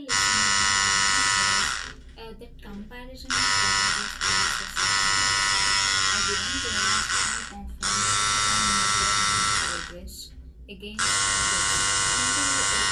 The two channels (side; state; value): both; identical; correlation 1.00